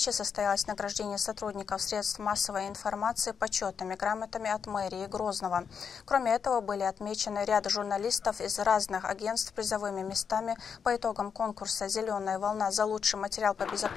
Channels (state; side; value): quieter; right; 6.7 dB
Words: состоялось награждение сотрудников средств массовой информации почетными грамотами от мэрии Грозного. Кроме этого, были отмечены ряд журналистов из разных агентств призовыми местами по итогам конкурса «Зеленая волна» за лучший материал по